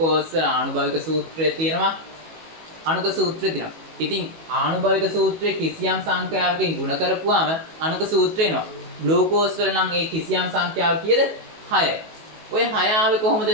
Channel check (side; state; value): left; late; 18 ms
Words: වල ආනුභාවික සූත්‍රය තියෙනවා. අණුක සූත්‍රය තියෙනවා. ඉතින් ආනුභාවික සූත්‍රයේ කිසියම් සංඛ්‍යාවකින් ගුණ කරපුවාම අණුක සූත්‍රය එනවා. ග්ලූකෝස් වල නම් ඒ කිසියම් සංඛ්‍යාව කීයද? 6යි. ඔය 6 ආවේ කොහොමද?